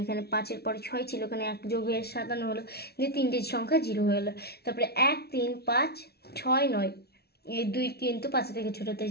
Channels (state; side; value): late; right; 0.46 ms